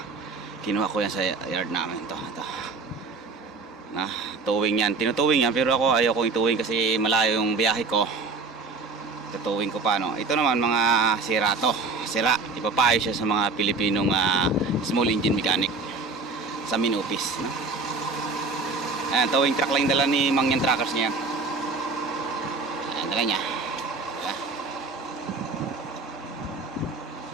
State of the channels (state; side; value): quieter; left; 4.0 dB